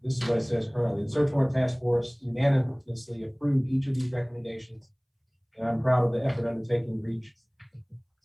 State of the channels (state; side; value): identical; both; correlation 1.00